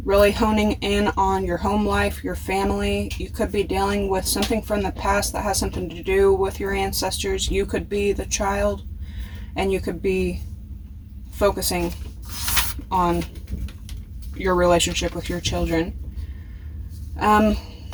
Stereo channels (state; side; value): identical; both; correlation 1.00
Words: really honing in on your home life, your family. You could be dealing with something from the past that has something to do with your ancestors. You could be the child, and you could be focusing on your relationship with your children. I